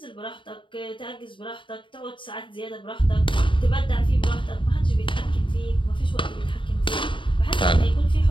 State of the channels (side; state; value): right; late; 0.24 ms